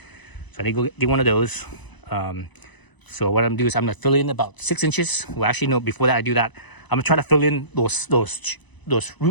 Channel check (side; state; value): right; late; 1.0 ms